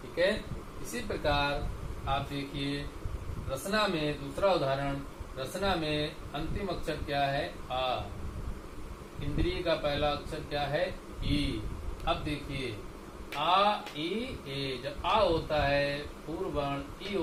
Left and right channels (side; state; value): both; identical; correlation 1.00